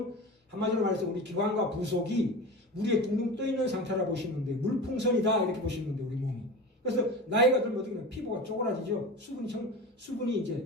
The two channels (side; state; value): both; normal; correlation 0.31